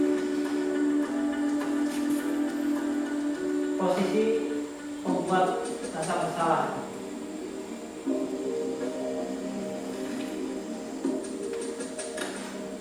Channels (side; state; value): both; identical; correlation 1.00